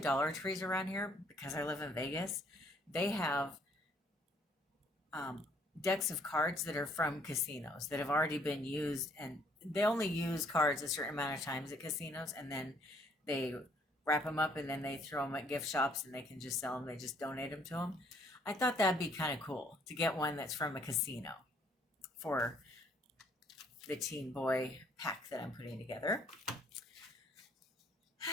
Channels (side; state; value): both; normal; correlation 0.64